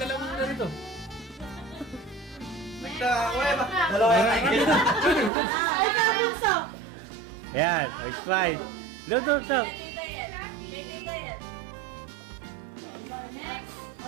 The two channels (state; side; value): drops out; left; at 5.3 s